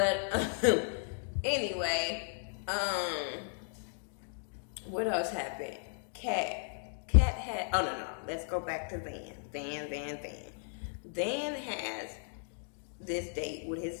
anyway, what else happened? Cat had, oh no, let's go back to Van. Van has this date with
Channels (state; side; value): silent; right; digital silence